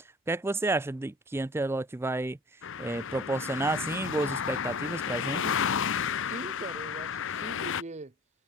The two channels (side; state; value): both; normal; correlation 0.45